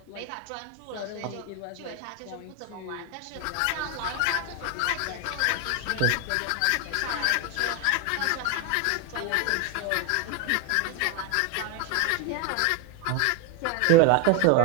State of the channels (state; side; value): different; both; correlation 0.01